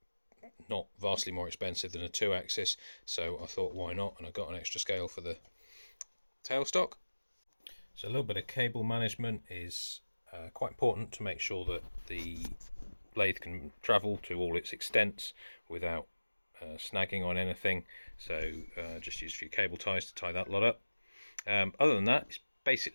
not vastly more expensive than a 2-axis, so I thought why not, and I got an extra scale for the tailstock. So a little bit of cable management is quite important to make sure that the lathe can travel to all its extents without snagging on anything. So just use a few cable ties to tie that lot up. Other than that, it's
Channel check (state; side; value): inverted; both; correlation -1.00